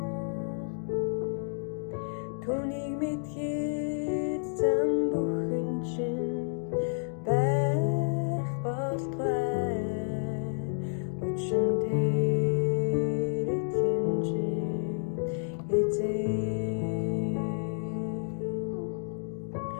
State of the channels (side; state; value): right; silent; digital silence